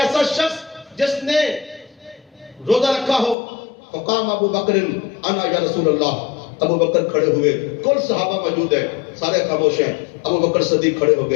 شخص جس نے روزہ رکھا ہو. فقام ابو بکر انا یا رسول اللہ, ابو بکر کھڑے ہوئے, کل صحابہ موجود ہیں, سارے خاموش ہیں. ابو بکر صدیق کھڑے ہو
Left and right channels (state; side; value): drops out; right; at 3.4 s